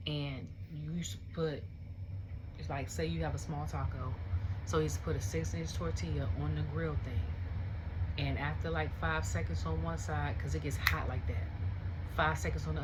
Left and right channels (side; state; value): both; identical; correlation 1.00